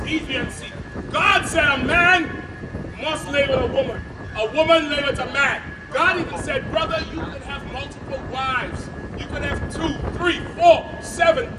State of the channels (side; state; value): both; identical; correlation 1.00